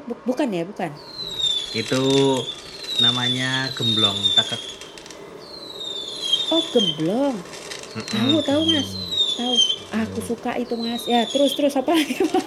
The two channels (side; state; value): both; identical; correlation 1.00